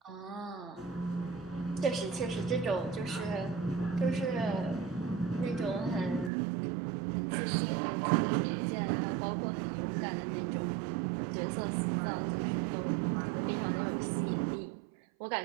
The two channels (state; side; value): drops out; left; at 6.3 s